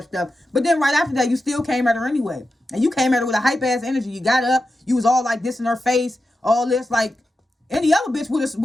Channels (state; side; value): normal; both; correlation 0.90